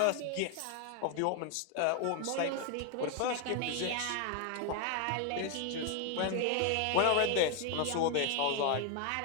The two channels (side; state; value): both; different; correlation 0.01